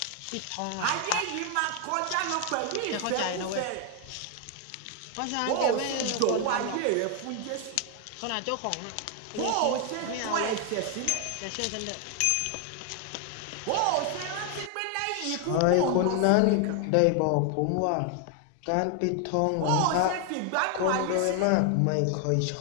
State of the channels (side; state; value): both; different; correlation 0.01